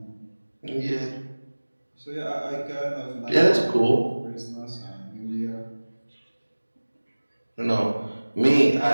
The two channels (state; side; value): inverted; both; correlation -1.00